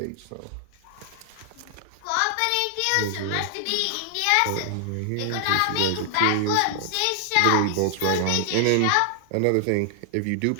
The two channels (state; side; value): different; both; correlation 0.00